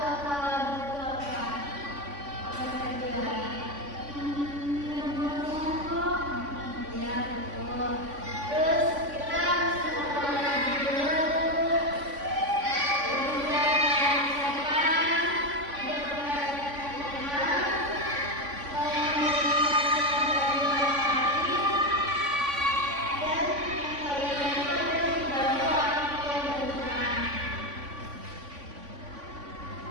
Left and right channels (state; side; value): late; left; 3.5 ms